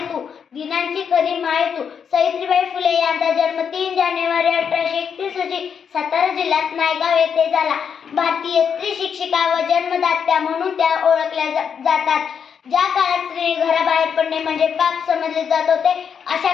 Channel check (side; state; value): right; quieter; 7.1 dB